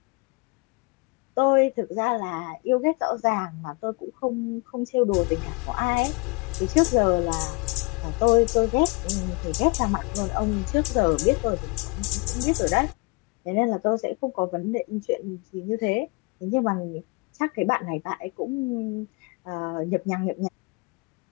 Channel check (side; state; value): right; quieter; 28.9 dB